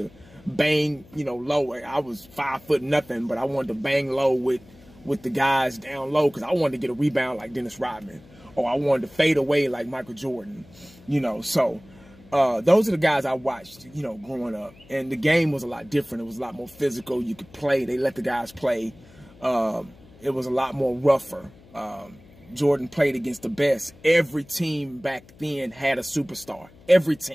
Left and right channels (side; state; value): left; noise; hum, 24 dB below the sound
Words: to bang, you know, low. I was 5 foot nothing, but I wanted to bang low with the guys down low, because I wanted to get a rebound like Dennis Rodman, or I wanted to fade away like Michael Jordan, you know. So those are the guys I watched, you know, growing up. And the game was a lot different. It was a lot more physical. You could play. They let the guys play. It was a lot more rougher. Jordan played against the best. Every team back then had a superstar. Every